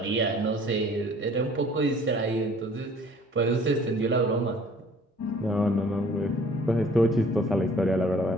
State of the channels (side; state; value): both; normal; correlation 0.53